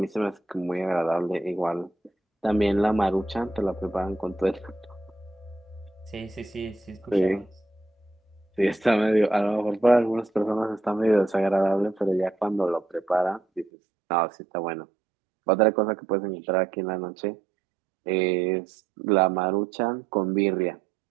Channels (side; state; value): left; drops out; at 13.7 s